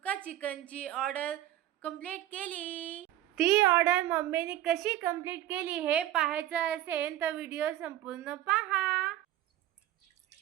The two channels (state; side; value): quieter; left; 13.4 dB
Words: चिकनची ऑर्डर कंप्लीट केली। ती ऑर्डर मम्मीने कशी कंप्लीट केली हे पाहायचं असेल तर व्हिडिओ संपूर्ण पहा।